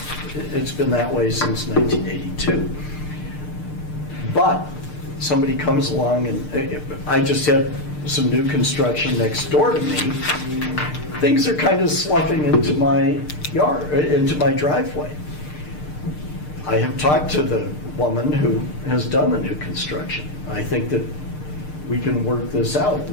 It's been that way since 1982. But somebody comes along and I just had some new construction next door to me. Things are kind of sloughing into my yard, into my driveway. I have talked to the woman who has done the new construction. I think that we can work this out.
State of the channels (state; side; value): late; right; 6.6 ms